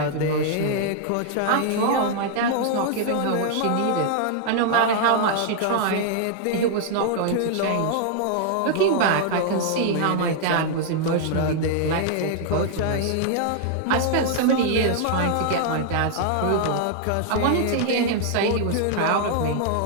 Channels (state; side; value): different; both; correlation -0.01